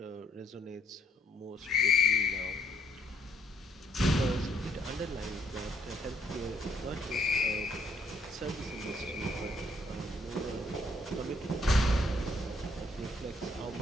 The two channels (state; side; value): normal; both; correlation 0.67